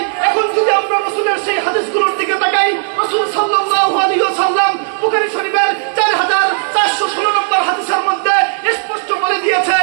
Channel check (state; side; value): silent; left; digital silence